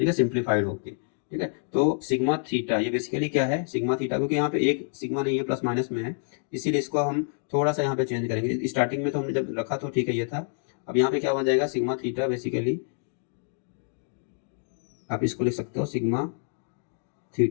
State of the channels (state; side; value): silent; right; digital silence